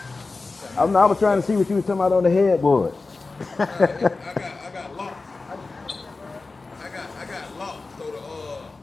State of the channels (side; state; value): right; quieter; 3.7 dB